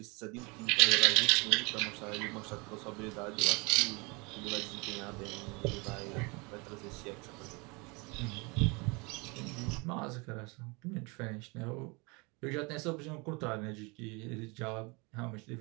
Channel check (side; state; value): left; quieter; 28.5 dB